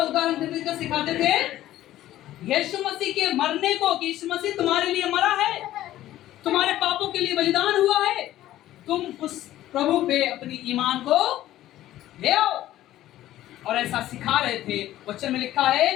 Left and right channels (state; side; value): quieter; right; 14.0 dB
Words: उदाहरण दे देकर सिखाते थे? यीशु मसीह के मरने को, कि यीशु मसीह तुम्हारे लिए मरा है, तुम्हारे पापों के लिए बलिदान हुआ है, तुम उस प्रभु पे अपनी ईमान को ले आओ। और ऐसा सिखा रहे थे। वचन में लिखा